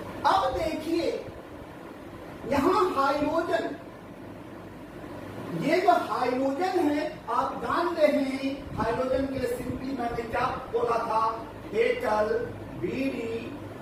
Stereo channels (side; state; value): both; identical; correlation 1.00